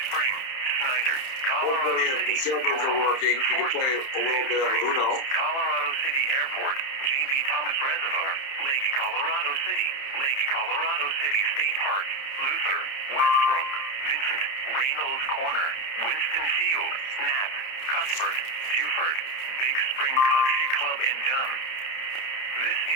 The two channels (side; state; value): right; late; 30 ms